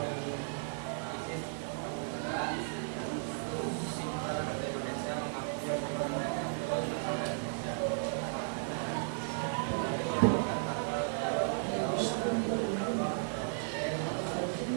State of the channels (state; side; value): silent; left; digital silence